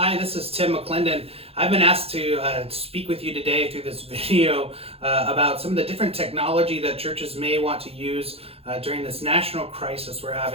this is Tim McClendon. I've been asked to speak with you today through this video about some of the different technology that churches may want to use during this national crisis we're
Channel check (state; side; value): late; left; 0.28 ms